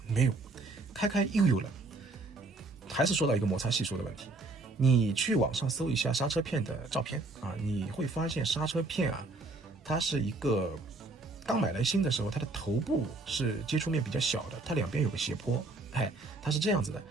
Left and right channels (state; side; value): quieter; left; 3.3 dB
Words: 没有，开又有了，还是说到一个摩擦系数的问题。你去网上搜一下刹车片的照片啊，你会发现刹车片啊，它是一个刚买来新的时候，它的头部是接触面比较小的，它两边有个斜坡，它是这样子的。